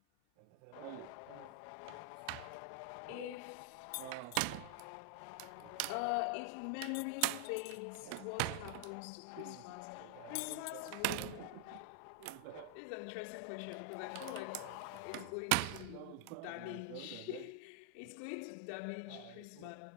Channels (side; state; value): both; different; correlation 0.00